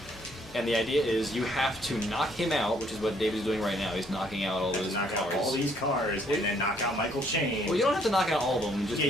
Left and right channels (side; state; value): both; normal; correlation 0.66